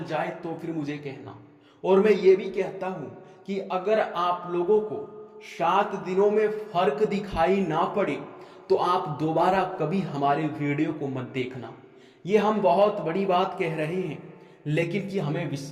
जाए तो फिर मुझे कहना। और मैं ये भी कहता हूं कि अगर आप लोगों को 7 दिनों में फर्क दिखाई ना पड़े तो आप दोबारा कभी हमारे वीडियो को मत देखना। ये हम बहुत बड़ी बात कह रहे हैं, लेकिन कि हमें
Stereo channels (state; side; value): identical; both; correlation 1.00